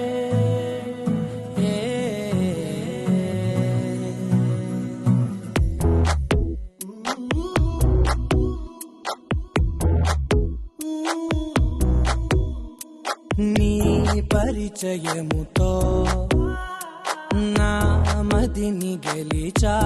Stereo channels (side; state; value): both; identical; correlation 1.00